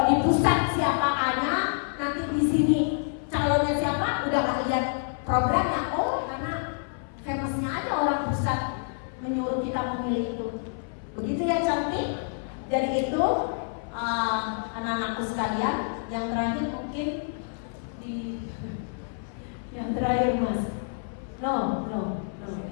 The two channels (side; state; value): right; silent; 57 dB below the other